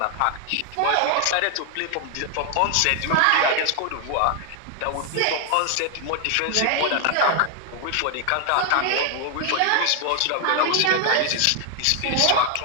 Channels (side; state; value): both; different; correlation 0.00